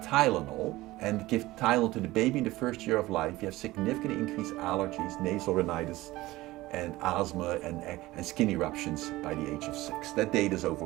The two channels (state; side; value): quieter; left; 18.3 dB